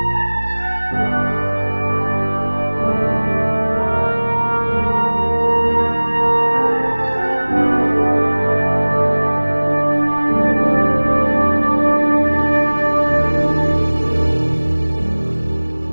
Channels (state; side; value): inverted; both; correlation -1.00